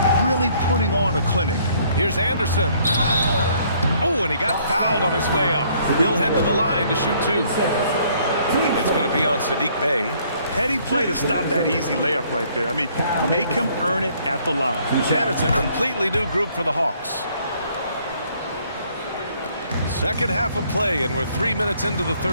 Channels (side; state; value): both; inverted; correlation -0.63